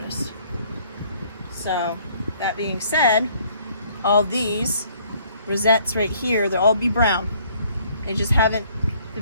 So that being said, all these rosettes right here, they'll all be brown. They just haven't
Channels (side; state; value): both; inverted; correlation -0.61